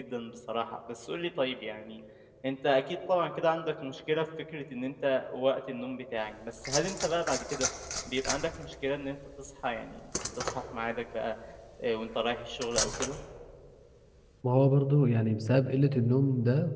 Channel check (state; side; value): identical; both; correlation 1.00